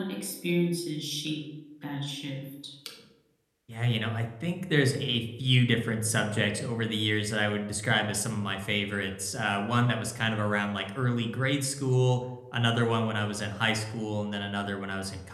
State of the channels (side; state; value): both; identical; correlation 1.00